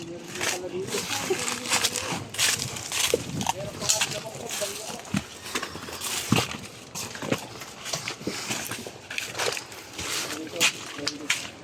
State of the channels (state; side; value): identical; both; correlation 1.00